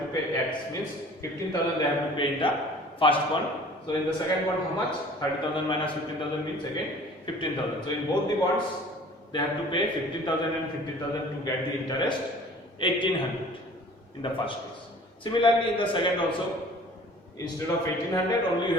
to pay? X means 15,000 they have to pay in the first bond. So in the second bond, how much? 30,000 minus 15,000 means again 15,000. So in both the bonds, they have to pay 15,000 and 15,000 to get the interest 1800 in the first case. Similarly, in the second also, instead of 1800, only you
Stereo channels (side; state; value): both; normal; correlation 0.48